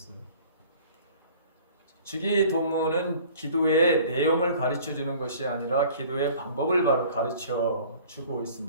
주기도문은 기도의 내용을 가르쳐 주는 것이 아니라 기도의 방법을 바로 가르쳐 주고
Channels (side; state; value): both; inverted; correlation -0.49